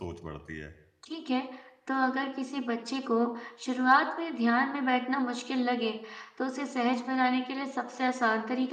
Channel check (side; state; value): both; identical; correlation 1.00